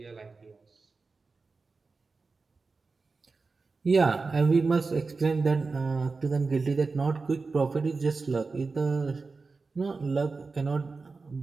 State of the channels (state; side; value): quieter; left; 4.1 dB